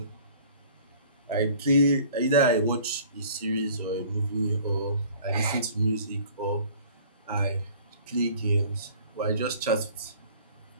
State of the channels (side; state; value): both; inverted; correlation -0.51